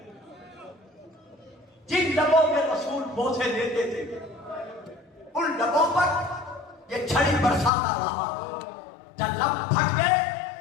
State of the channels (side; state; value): right; drops out; at 7.7 s